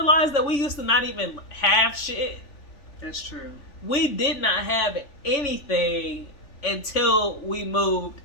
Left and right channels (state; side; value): late; right; 3.4 ms